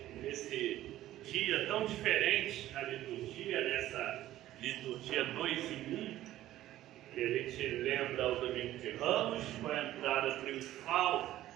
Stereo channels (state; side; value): quieter; left; 14.1 dB